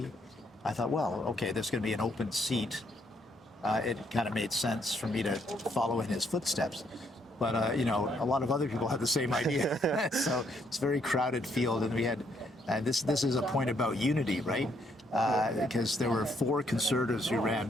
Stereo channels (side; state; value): both; normal; correlation 0.71